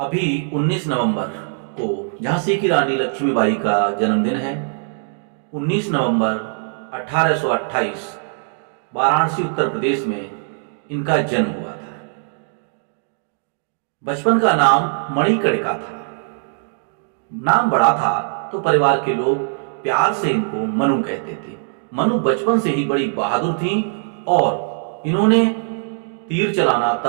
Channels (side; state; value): left; silent; digital silence